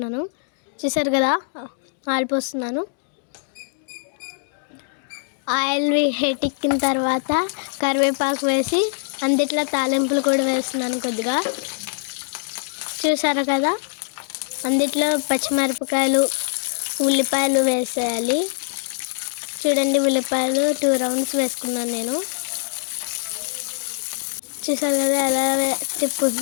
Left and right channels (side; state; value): right; silent; digital silence